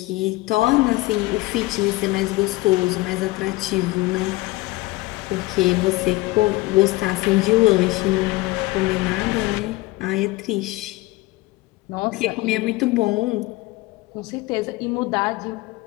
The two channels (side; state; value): right; quieter; 20.4 dB